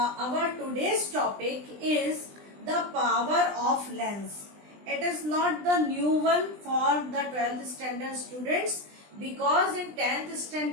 today's topic is the power of lens. It is not the new one for the 12th standard students because in 10th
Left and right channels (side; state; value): left; late; 20 ms